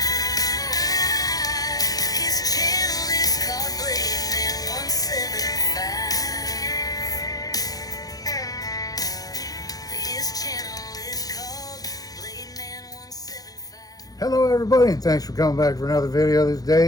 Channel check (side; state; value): right; late; 0.18 ms